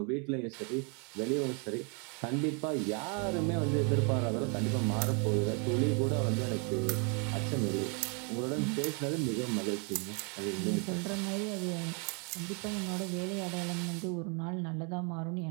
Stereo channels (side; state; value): left; quieter; 36.0 dB